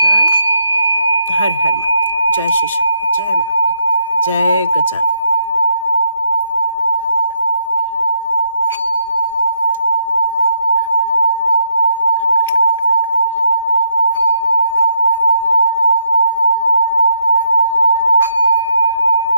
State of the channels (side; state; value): both; inverted; correlation -0.74